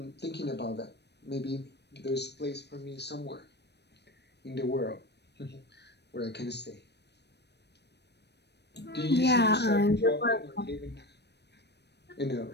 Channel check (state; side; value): late; right; 0.49 ms